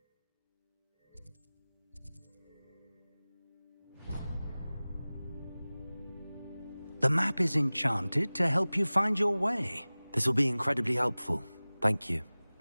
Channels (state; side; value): inverted; both; correlation -0.99